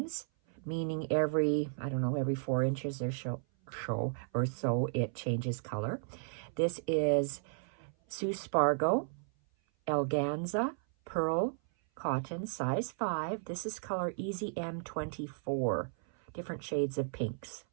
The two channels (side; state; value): left; silent; 55 dB below the other